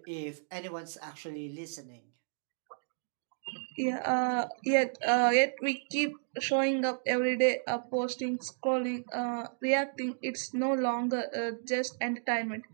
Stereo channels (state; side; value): silent; left; digital silence